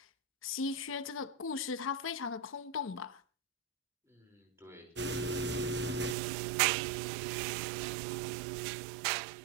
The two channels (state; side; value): drops out; left; at 6.2 s